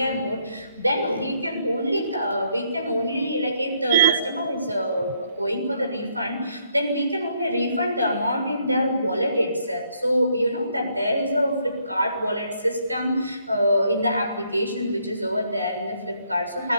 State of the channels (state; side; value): inverted; both; correlation -0.71